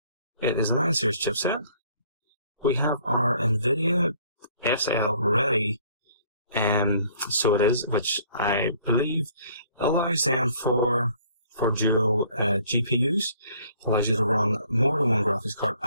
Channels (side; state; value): both; inverted; correlation -0.59